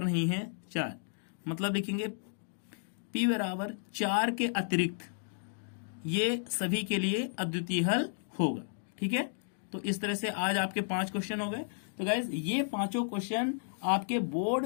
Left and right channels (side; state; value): right; silent; digital silence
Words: नहीं है 4, मतलब लिखेंगे p बराबर 4 के अतिरिक्त ये सभी के लिए अद्वितीय हल होगा, ठीक है। तो इस तरह से आज आपके 5 क्वेश्चन हो गए। तो गाइज ये 5 क्वेश्चन आपके